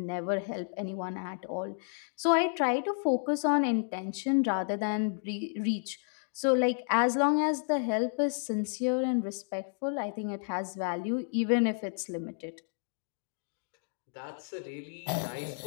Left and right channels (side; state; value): right; silent; digital silence